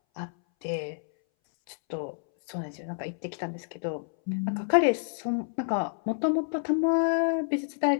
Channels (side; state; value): right; silent; 59 dB below the other